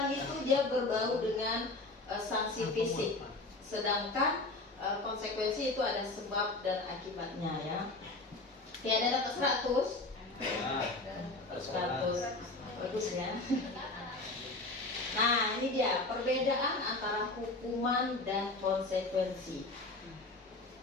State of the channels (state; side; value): quieter; right; 3.1 dB